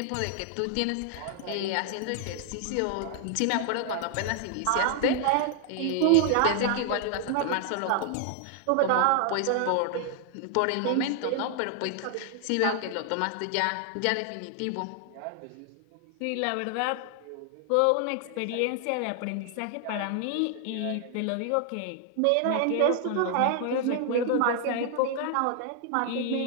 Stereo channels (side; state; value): both; different; correlation 0.00